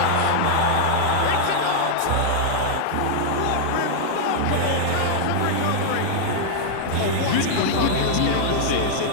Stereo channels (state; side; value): different; both; correlation -0.01